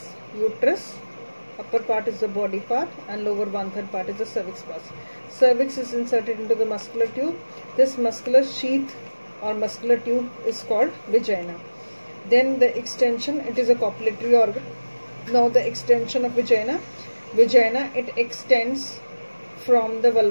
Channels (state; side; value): inverted; both; correlation -1.00